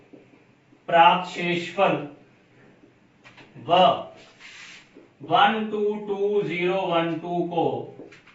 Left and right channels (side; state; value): both; identical; correlation 1.00